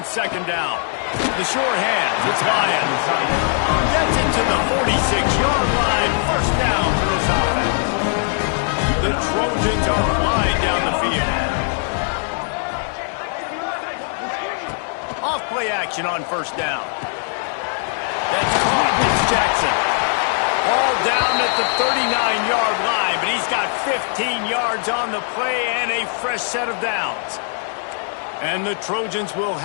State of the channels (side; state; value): right; silent; 57 dB below the other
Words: second down. The short hands, it's Lyons. Gets into the 46-yard line. First down for this offense. The Trojans are flying down the field. Off-play action on first down. That's caught. It's Jackson. All down at the 39-yard line, but he's got 15 yards on the play and a fresh set of downs. And the Trojans will